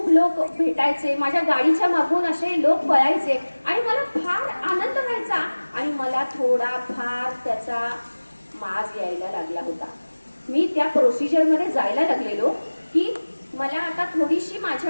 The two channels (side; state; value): both; inverted; correlation -1.00